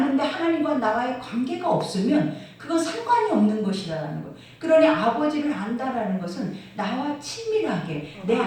하나님과 나와의 관계가 없으면 그건 상관이 없는 것이라는 거예요. 그러니 아버지를 안다라는 것은 나와 친밀하게 내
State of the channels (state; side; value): identical; both; correlation 1.00